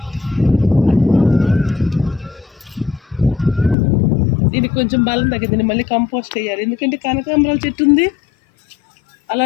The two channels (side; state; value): right; drops out; at 3.8 s